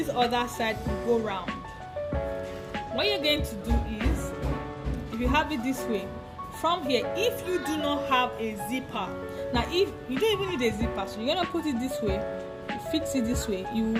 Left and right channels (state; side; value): identical; both; correlation 1.00